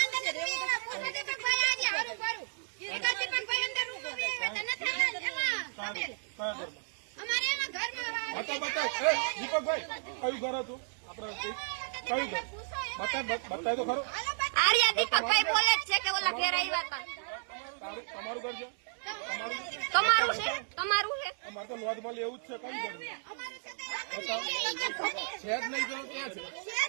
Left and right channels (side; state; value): left; silent; digital silence